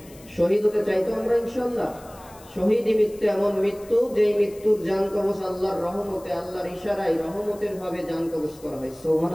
শহীদ হতে চাই তো আমরা ইনশাআল্লাহ। শহীদি মৃত্যু এমন মৃত্যু যেই মৃত্যুর জান কবজ আল্লাহর রহমতে, আল্লাহর ইশারায় রহমতের ভাবে জান কবজ করা হয়।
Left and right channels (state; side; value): noise; left; hiss, 23 dB below the sound